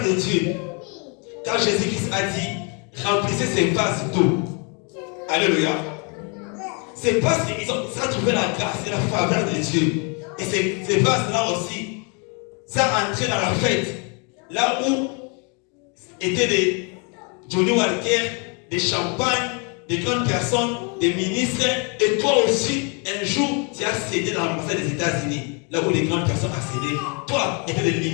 de Dieu. Car Jésus-Christ a dit, remplissez ces vases d'eau. Alléluia. C'est parce qu'ils ont trouvé la grâce et la faveur de Dieu. Et ces vases-là aussi, ça a entré dans la fête. Là où étaient des Johnny Walker, des champagnes, des grandes personnes, des ministres. Et toi aussi, un jour, tu as cédé dans l'ambassade des États-Unis. Là où les grandes personnes accédaient. Toi, il y avait des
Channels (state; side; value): quieter; right; 35.0 dB